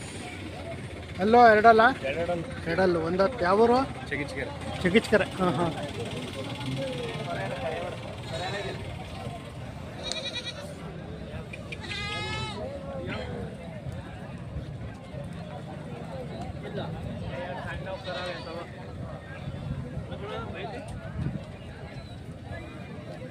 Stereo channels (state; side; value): identical; both; correlation 1.00